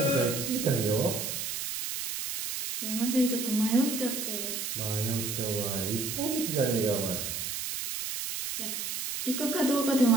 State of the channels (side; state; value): right; noise; hiss, 4 dB below the sound